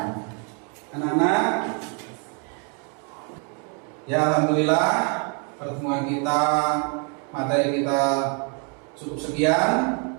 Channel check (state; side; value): quieter; left; 37.9 dB